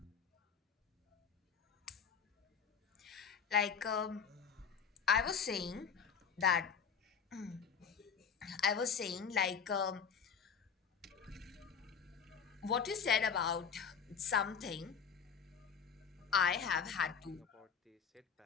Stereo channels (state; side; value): quieter; right; 6.5 dB